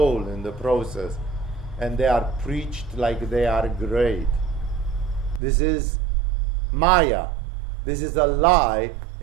in the process. And they are preached like they are great. This is Maya. This is a lie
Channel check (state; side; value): drops out; left; at 5.4 s